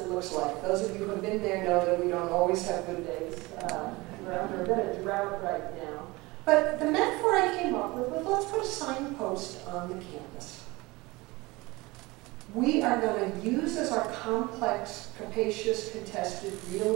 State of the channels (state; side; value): quieter; left; 22.3 dB